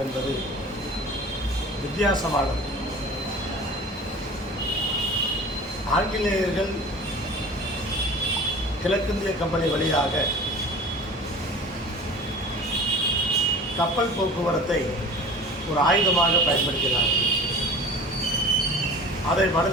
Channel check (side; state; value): both; normal; correlation 0.40